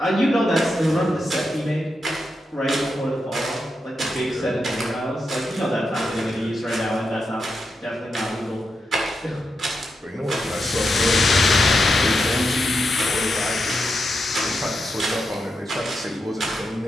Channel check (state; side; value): normal; both; correlation 0.86